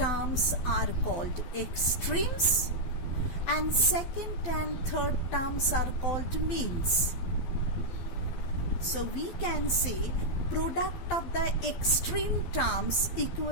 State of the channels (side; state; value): right; late; 12 ms